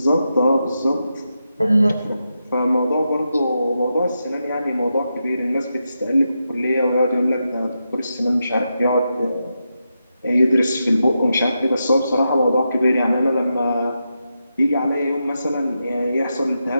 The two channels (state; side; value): inverted; both; correlation -0.87